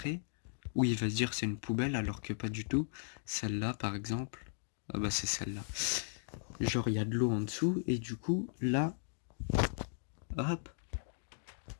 Ou il va se dire c'est une poubelle alors que pas du tout. Celle-là par exemple. Ah bah c'est celle-là. Genre il y a de l'eau en dessous et du coup là. Hop.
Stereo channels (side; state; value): right; silent; digital silence